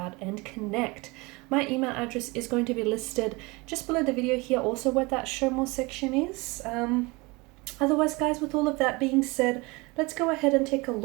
and connect. My email address is going to be listed just below the video here, also where that show more section is. Otherwise, guys, with all of that being said, let's go ahead and take a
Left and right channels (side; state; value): left; quieter; 25.2 dB